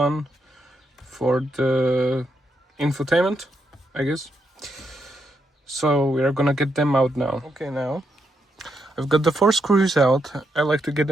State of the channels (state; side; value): normal; both; correlation 0.81